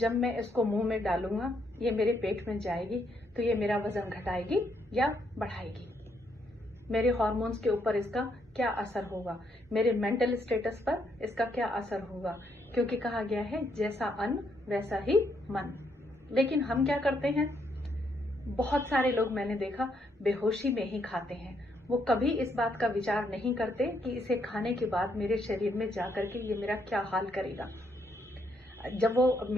मैं इसको मुंह में डालूंगा, ये मेरे पेट में जाएगी तो ये मेरा वजन घटाएगी या बढ़ाएगी। मेरे हार्मोन्स के ऊपर इसका क्या असर होगा, मेरे मेंटल स्टेटस पर इसका क्या असर होगा, क्योंकि कहा गया है जैसा अन्न वैसा ही मन। लेकिन हम क्या करते हैं, बहुत सारे लोग मैंने देखा बेहोशी में ही खाते हैं। वो कभी इस बात का विचार नहीं करते कि इसे खाने के बाद मेरे शरीर में जाकर के ये मेरा क्या हाल करेगा। जब वो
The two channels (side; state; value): both; normal; correlation 0.74